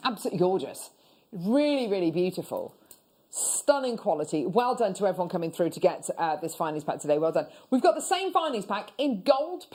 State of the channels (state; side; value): identical; both; correlation 1.00